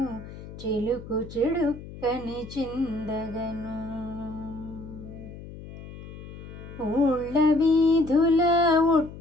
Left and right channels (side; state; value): left; noise; hum, 14 dB below the sound